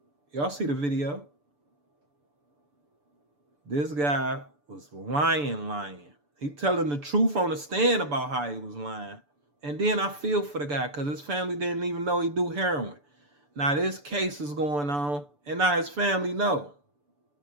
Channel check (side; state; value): left; late; 6.9 ms